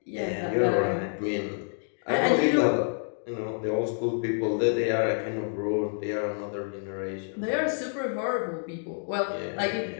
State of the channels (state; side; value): silent; right; digital silence